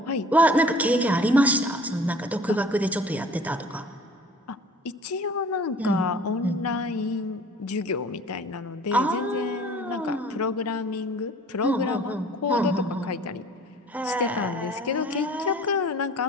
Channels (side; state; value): both; normal; correlation 0.48